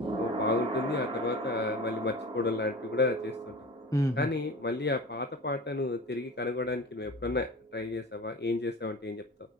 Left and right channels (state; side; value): normal; both; correlation 0.34